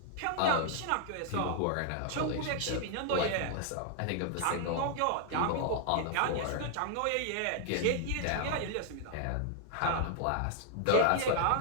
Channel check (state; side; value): different; both; correlation 0.00